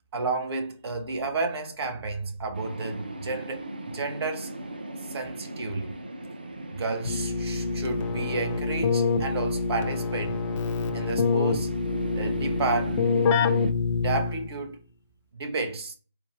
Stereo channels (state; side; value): inverted; both; correlation -0.61